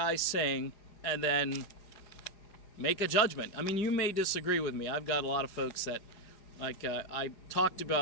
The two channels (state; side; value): late; right; 4.9 ms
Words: sing, and then make a judgment. I mean, you may disagree with me. I've got a lot of folks that, I talked